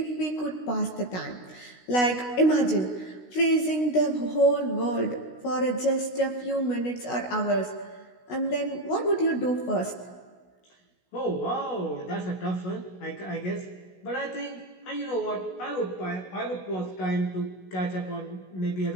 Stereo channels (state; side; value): late; right; 16 ms